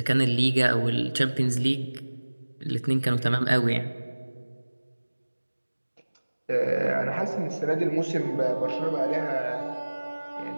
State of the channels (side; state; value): both; inverted; correlation -1.00